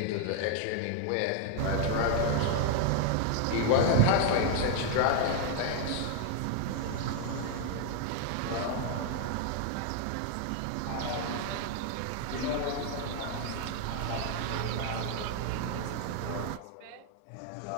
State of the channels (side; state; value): both; different; correlation 0.01